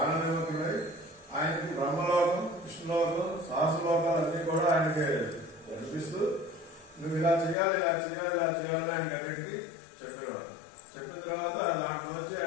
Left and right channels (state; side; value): drops out; right; at 7.6 s